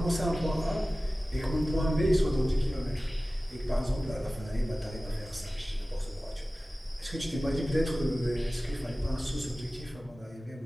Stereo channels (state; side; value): normal; both; correlation 0.97